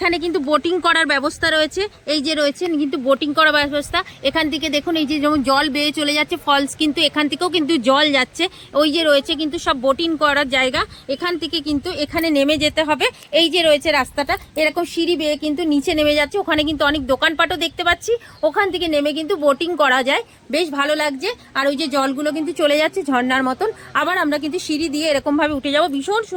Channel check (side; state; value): both; identical; correlation 1.00